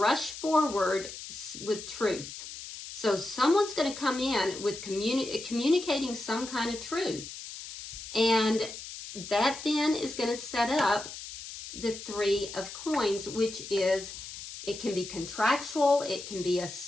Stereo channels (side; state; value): left; noise; hiss, 11 dB below the sound